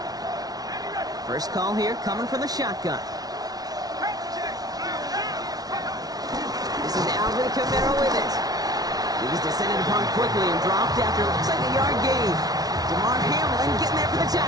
First call here coming from the shotgun. This is Alvin Kamara with it. He's descended upon quickly and dropped after looks like a yard gain. DeMar Hamlin getting there for the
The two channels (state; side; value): late; left; 0.19 ms